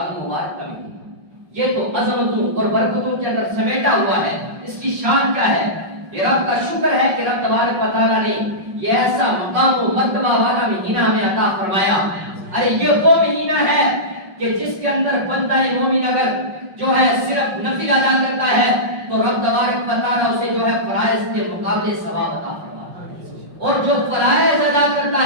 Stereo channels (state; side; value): late; left; 5.5 ms